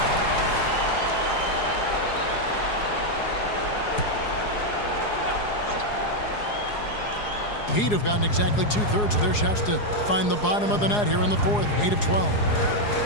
Heat have gotten exactly 2/3 of their shots to find the bottom of the net here in the fourth. 8 of 12.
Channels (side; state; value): right; late; 4.8 ms